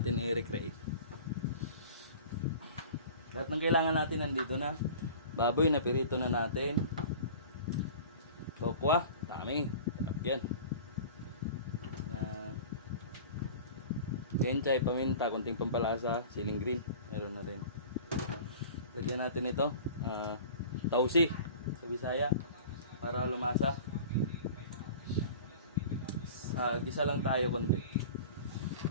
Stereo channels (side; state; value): both; inverted; correlation -0.40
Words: i-recreate. Lahat ng kailangan natin nandito na. Baboy na pirito na natin. Tokwa, dami. Sarap yan. Kenchay, paminta, konting pampalasa, siling green, meron na rin. Lagyan natin ito, tausi sa Bisaya para lumasa. Gisa lang tayo konti.